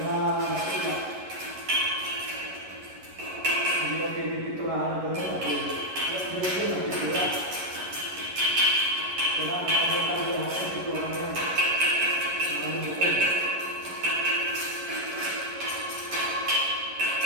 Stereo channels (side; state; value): left; late; 11 ms